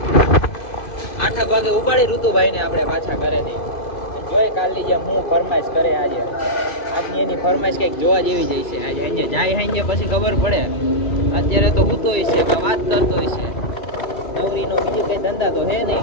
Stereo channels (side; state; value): right; late; 2.5 ms